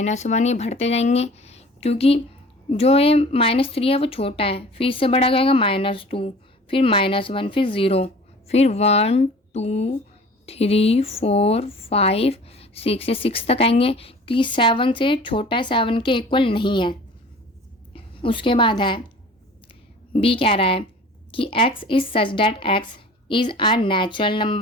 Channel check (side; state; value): both; normal; correlation 0.45